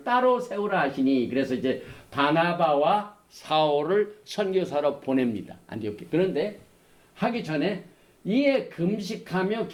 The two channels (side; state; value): both; identical; correlation 1.00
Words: 따로 세우라 하시니, 그래서 이제 바나바와 사울을 선교사로 보냅니다. 안디옥에. 그런데 하기 전에 이에 금식하며